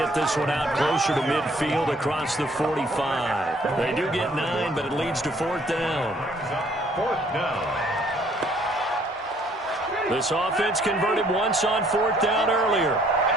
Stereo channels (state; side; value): normal; both; correlation 0.62